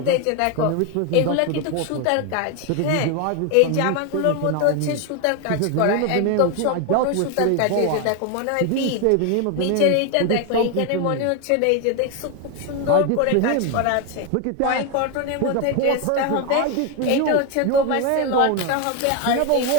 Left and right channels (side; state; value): both; different; correlation 0.01